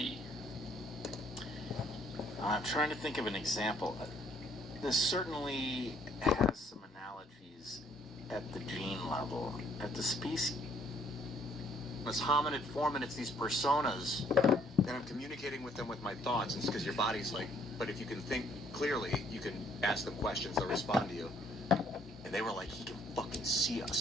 I'm trying to think of an example. This certainly has some analogies at the gene level. At the species, This hominid form, and it's these personas, and I'm communicating with them with my thoughts. And it's because your body's like, but if you can think clearly, you can ask them questions, they'll respond to you. And they were like, he can fucking see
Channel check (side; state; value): both; normal; correlation 0.64